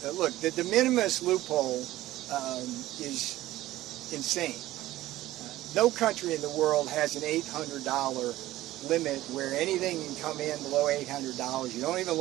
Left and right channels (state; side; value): quieter; left; 15.8 dB